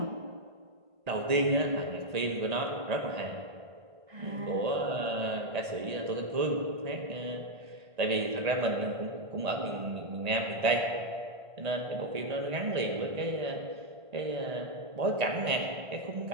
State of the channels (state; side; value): late; left; 1.8 ms